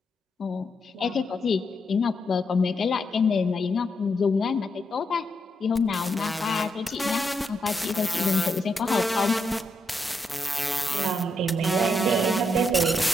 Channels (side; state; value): both; normal; correlation 0.81